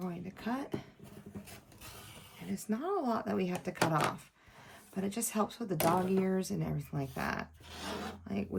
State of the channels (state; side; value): identical; both; correlation 1.00